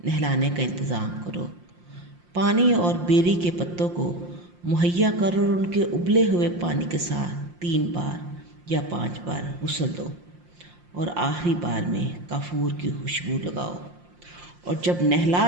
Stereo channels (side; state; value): left; late; 5.7 ms